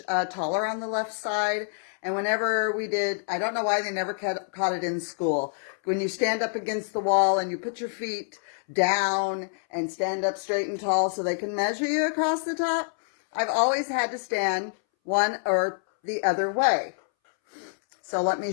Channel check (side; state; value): right; silent; 60 dB below the other